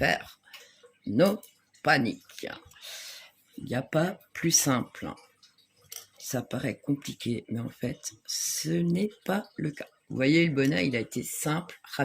No panique. Il n'y a pas plus simple. Ça paraît compliqué, mais en fait, ce n'est pas le cas. Vous voyez, le bonnet, il a été simple,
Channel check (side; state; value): both; identical; correlation 1.00